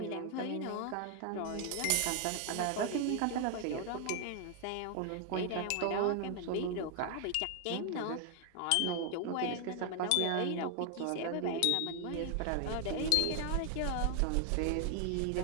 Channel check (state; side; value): different; both; correlation 0.00